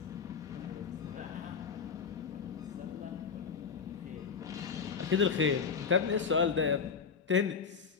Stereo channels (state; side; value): quieter; right; 5.9 dB